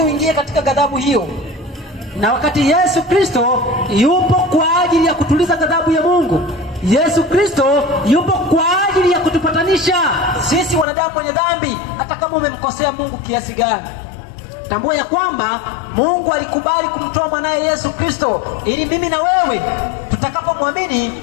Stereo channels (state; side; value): drops out; right; at 10.9 s